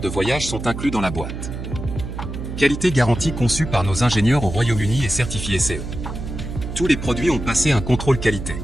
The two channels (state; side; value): noise; right; hum, 7 dB below the sound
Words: de voyage sont inclus dans la boîte. Qualité garantie conçue par nos ingénieurs au Royaume-Uni et certifié CE. Tous les produits ont passé un contrôle qualité.